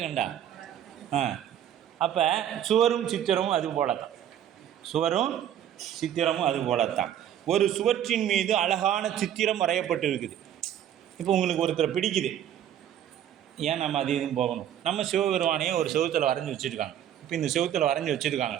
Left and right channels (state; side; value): quieter; left; 10.5 dB